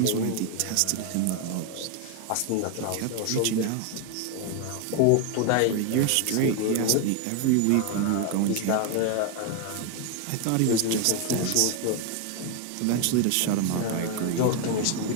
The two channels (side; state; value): both; different; correlation 0.01